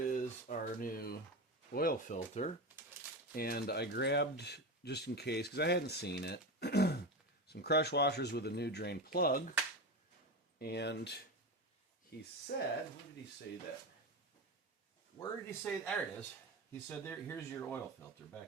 our new oil filter, and I grabbed, just in case, because I hadn't seen it, some crush washers with a new drain plug, and he said, where did he say that? Where did he say, there it is. He said, here's your oil filter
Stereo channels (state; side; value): normal; both; correlation 0.21